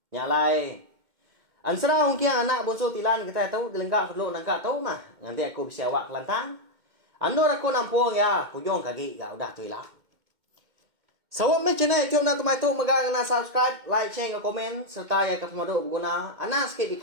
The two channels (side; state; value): left; late; 2.1 ms